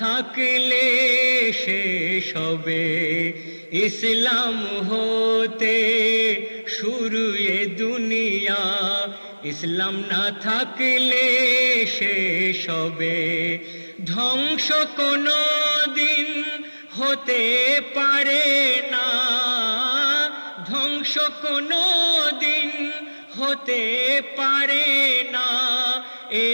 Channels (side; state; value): both; inverted; correlation -1.00